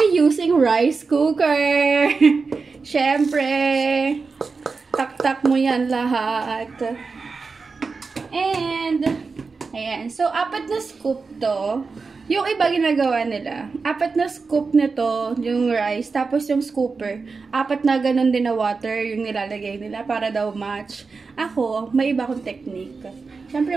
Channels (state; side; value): quieter; left; 4.5 dB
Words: using rice cooker. Syempre. Tak-tak mo yan lahat. And, ayan. So, 4 na scoop to. Yung iba ginagawa nila. 4 na scoop nito, yung rice. Tapos yung scooper. 4 na ganun din na water yung nilalagay nila para daw match. Ako, may iba akong technique. Siyempre,